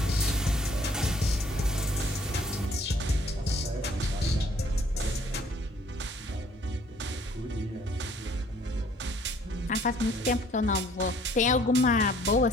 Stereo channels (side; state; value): both; normal; correlation 0.59